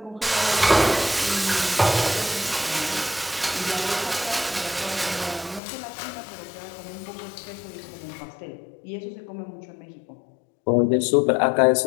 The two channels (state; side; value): drops out; right; at 5.6 s